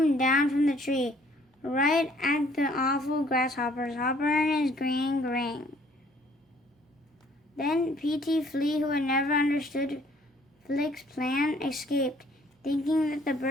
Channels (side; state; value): both; normal; correlation 0.60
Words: down from the tree, right at the awful grasshoppers. Hopper and his gang rang. Then P.T. Flea, who had never understood Flick's plan, escaped. Thinking that the